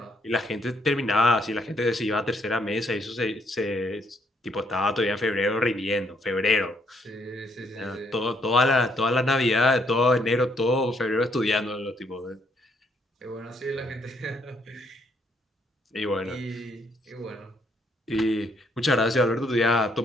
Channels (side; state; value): both; normal; correlation 0.71